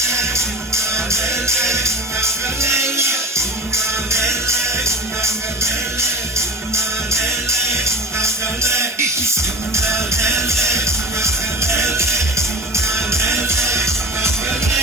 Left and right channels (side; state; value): both; normal; correlation 0.30